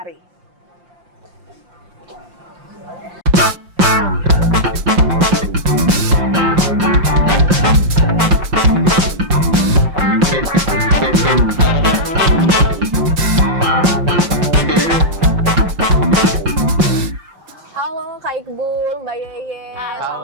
Halo Kak Iqbal, Mbak Yeye,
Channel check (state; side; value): late; left; 5.7 ms